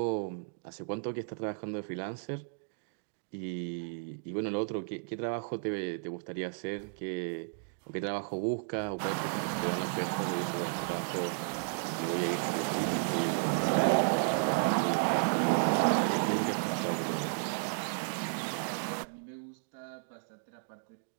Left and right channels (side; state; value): left; silent; digital silence